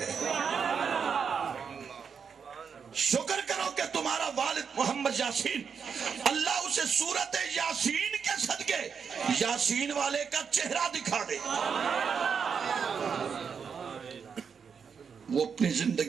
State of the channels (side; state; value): left; quieter; 6.4 dB